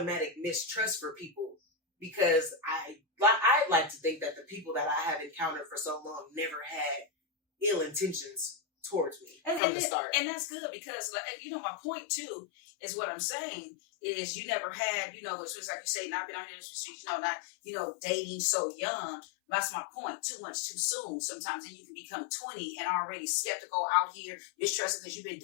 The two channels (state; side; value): drops out; right; at 9.6 s